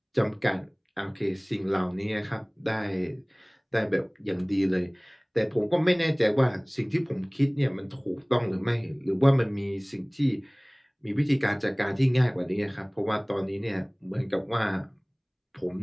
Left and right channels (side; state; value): both; identical; correlation 1.00